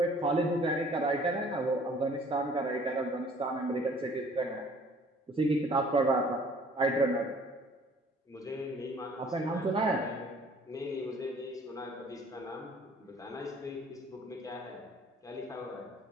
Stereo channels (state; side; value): normal; both; correlation 0.55